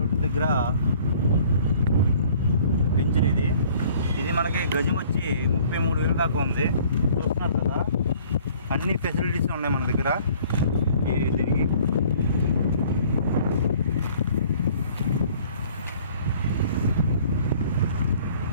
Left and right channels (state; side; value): inverted; both; correlation -0.54